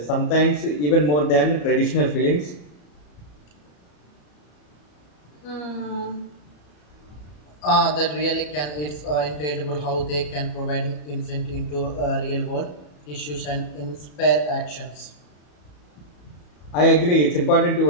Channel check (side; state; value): right; late; 34 ms